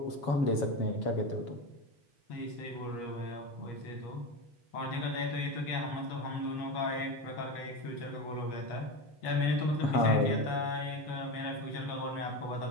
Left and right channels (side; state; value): right; late; 7.3 ms